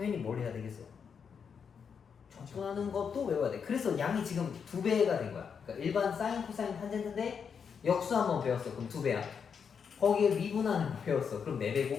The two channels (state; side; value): quieter; right; 6.6 dB